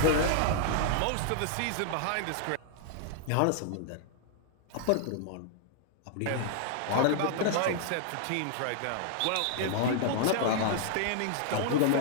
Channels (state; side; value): different; both; correlation -0.01